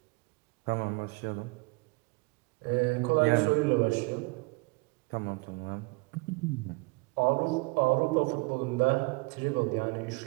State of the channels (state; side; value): quieter; left; 27.3 dB